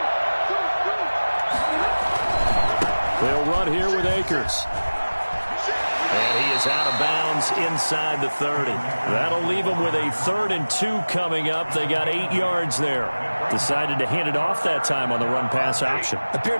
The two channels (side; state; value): both; inverted; correlation -1.00